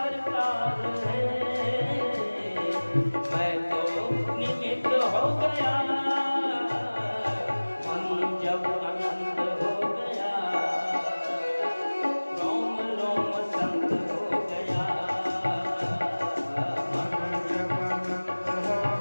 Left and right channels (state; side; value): inverted; both; correlation -1.00